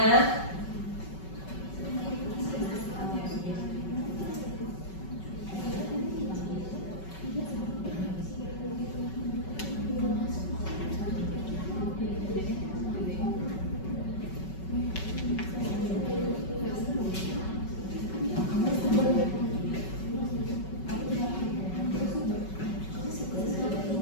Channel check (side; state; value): right; late; 5.3 ms